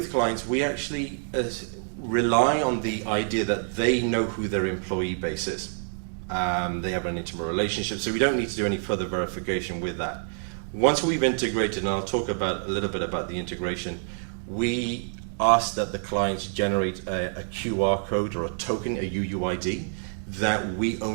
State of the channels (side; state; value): left; silent; digital silence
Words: clients, we actually rely on the idea that they know who their employee base is. They have an intimate relationship, so we don't need to do any further verification with that. Once we've integrated, and I'll talk about a little bit about the integration, we ask that the clients generate a QR code or a token, a UUID, that we